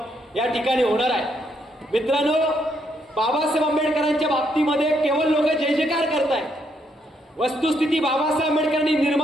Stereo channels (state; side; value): normal; both; correlation 0.74